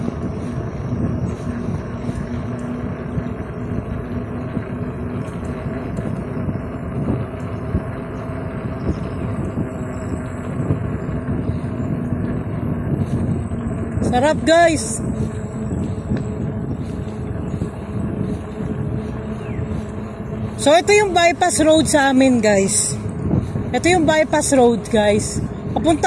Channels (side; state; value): both; identical; correlation 1.00